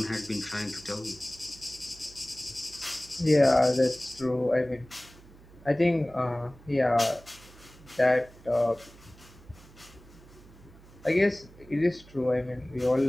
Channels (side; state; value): right; noise; hum, 22 dB below the sound